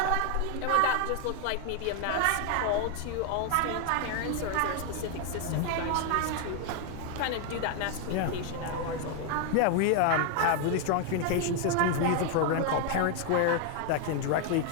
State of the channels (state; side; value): different; both; correlation 0.00